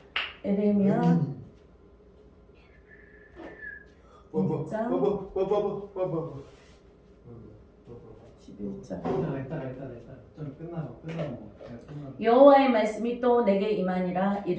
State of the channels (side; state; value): both; identical; correlation 1.00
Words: 에레미야 1장 11장. 좀 끝나고. 여호와의 말씀이 또 내게 임하니라